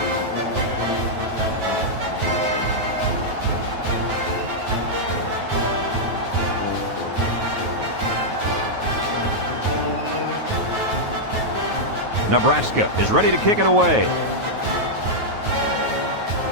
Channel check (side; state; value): left; late; 9.3 ms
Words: Nebraska is ready to kick it away.